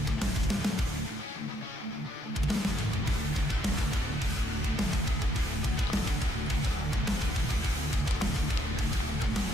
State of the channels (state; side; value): normal; both; correlation 0.70